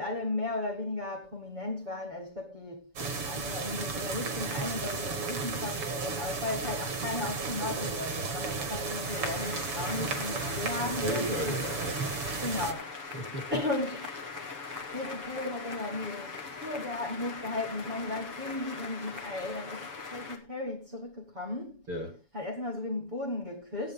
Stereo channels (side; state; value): left; late; 7.0 ms